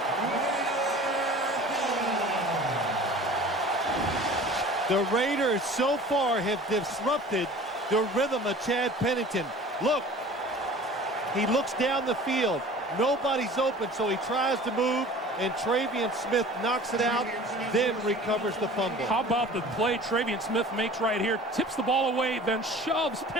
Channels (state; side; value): normal; both; correlation 0.43